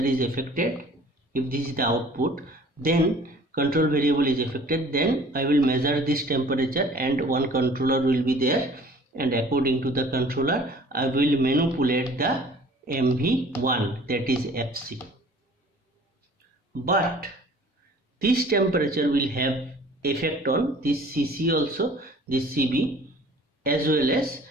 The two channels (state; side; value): normal; both; correlation 0.50